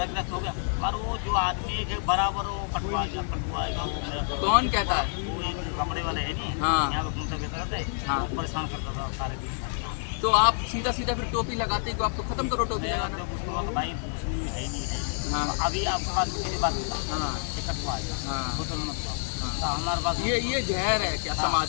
क्लास हो गया, पर वो जो आदमी है बराबर वो कटवाएगा वो मेरा कौन कहता है? वो एक कपड़े वाले है नहीं, हाँ। यहाँ पे घूमता फिरता रहता है। हाँ। वो परेशान करता था सारे दिन। तो आप सीधा सीधा फिर टोपी लगाते हैं, तो आप तो खत्म करो टोपी लगाना। जब उसको बोला, भाई मुस्लिम है ही नहीं है। हाँ। अभी आपके पास मेरी बात बता, हाँ। ये कटवाएगा, हाँ। बोतल मत लाओ। हाँ। तो हमारे पास ये जहर है क्या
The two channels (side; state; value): right; silent; 59 dB below the other